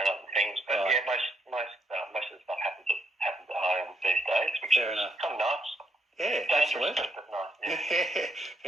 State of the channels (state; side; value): normal; both; correlation 0.76